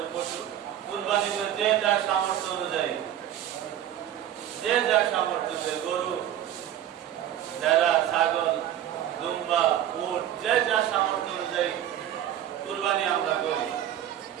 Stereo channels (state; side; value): quieter; left; 11.4 dB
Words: পশু কুরবানি করে, যে যার সামর্থ্য অনুযায়ী, যে যার সামর্থ্য অনুযায়ী, গরু, ভেড়া, ছাগল, দুম্বা, উট, যে যার সামর্থ্য অনুযায়ী কুরবানি আমরা করি।